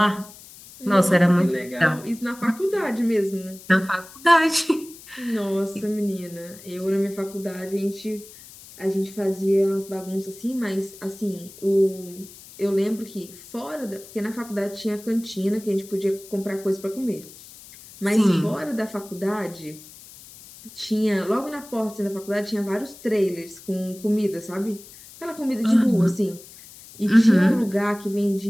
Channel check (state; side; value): noise; left; hiss, 19 dB below the sound